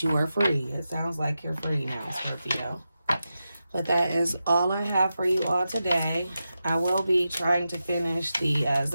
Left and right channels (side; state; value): both; inverted; correlation -0.91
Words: you are free. It sounds like you're free now, Scorpio. But that is all I have for you all today. I will be trying to finish the